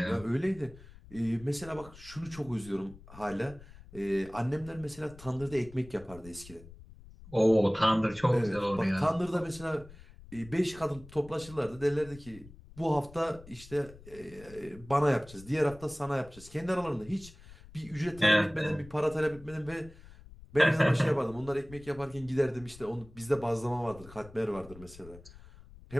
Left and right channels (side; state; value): left; noise; rumble, 19 dB below the sound